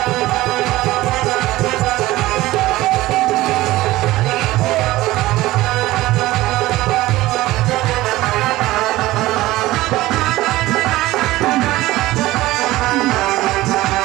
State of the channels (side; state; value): left; quieter; 17.5 dB